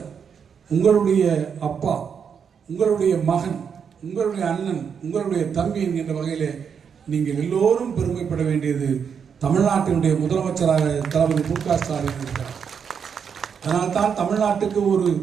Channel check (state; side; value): quieter; left; 7.0 dB